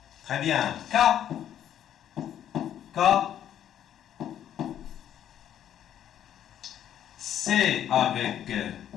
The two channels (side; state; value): right; quieter; 10.5 dB